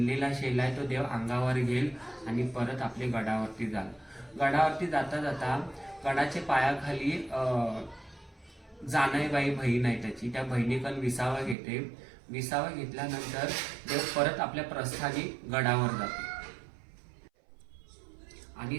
शेला आहे तो देव अंगावर घेईल आणि परत आपले गडावरती जाल. गडावरती जाता जाता गडाच्या पायाखाली जानाईबाई बहीण आहे त्याची, त्या बहिणीकडून विसावा घेते. विसावा घेतल्यानंतर देव परत आपल्या प्रस्थानी गडावर जाते. आणि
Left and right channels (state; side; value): drops out; left; at 11.6 s